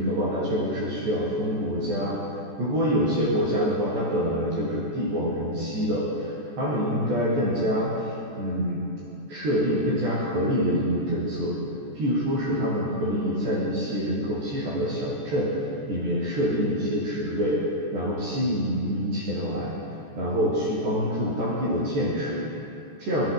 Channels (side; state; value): left; late; 14 ms